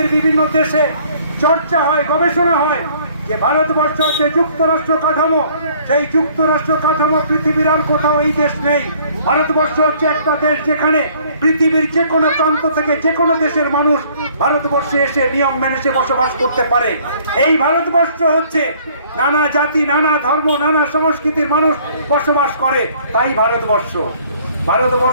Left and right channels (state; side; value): inverted; both; correlation -0.58